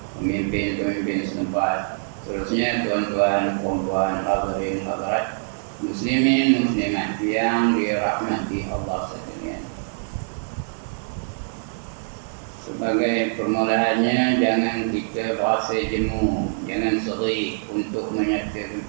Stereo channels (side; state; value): left; silent; 63 dB below the other